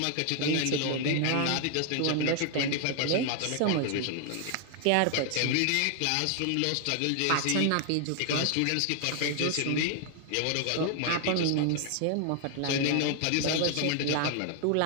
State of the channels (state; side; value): different; both; correlation 0.00